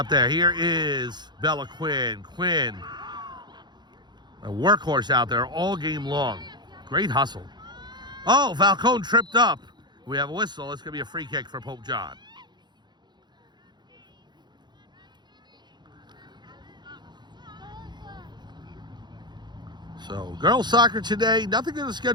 there. Here is Bella Quinn. Quinn, a workhorse out there all game long. Great hustle. Oh, Falcone tripped up. We have a whistle. It's going to be a free kick for Pope John. So, girls soccer today. Nothing on the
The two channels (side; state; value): left; late; 0.21 ms